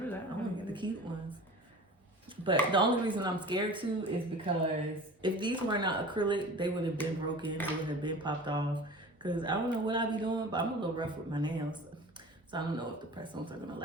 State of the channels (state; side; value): normal; both; correlation 0.39